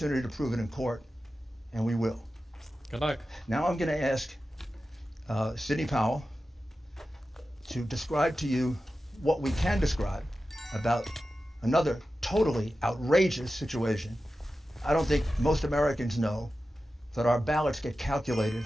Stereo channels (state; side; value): normal; both; correlation 0.93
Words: to prove it in court, and we will. Good luck. Now I'm going to ask Sidney Powell to describe to you what we can describe about another totally outrageous situation. I don't think most Americans know that our ballots get calculated,